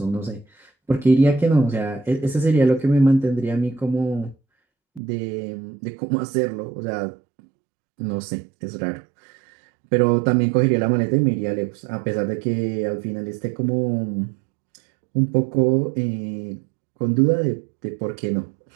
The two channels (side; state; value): left; drops out; at 5.0 s